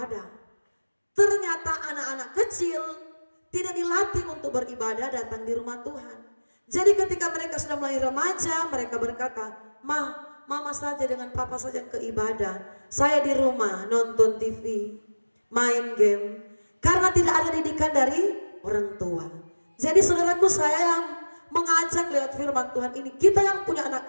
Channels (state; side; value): inverted; both; correlation -1.00